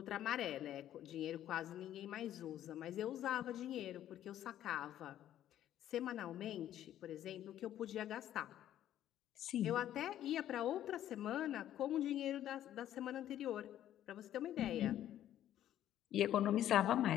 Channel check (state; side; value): quieter; right; 11.8 dB